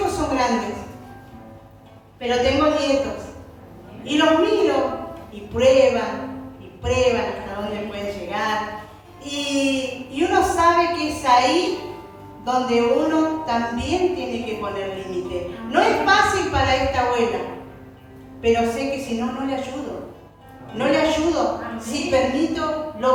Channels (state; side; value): identical; both; correlation 1.00